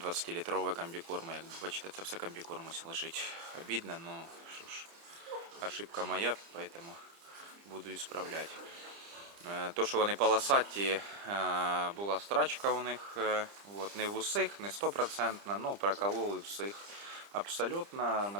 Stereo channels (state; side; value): late; left; 30 ms